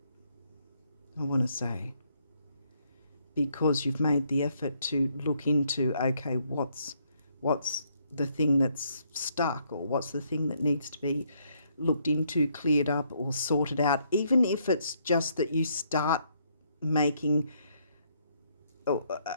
I want to say, because you've made the effort to look into, okay, what's the thing that's stuck, or what's the thing that needs to be looked into, cleared up, or sorted out, even if it's just that you start making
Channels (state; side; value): inverted; both; correlation -0.71